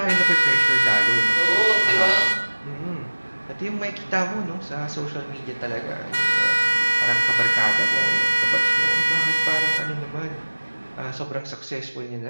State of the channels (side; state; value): both; inverted; correlation -1.00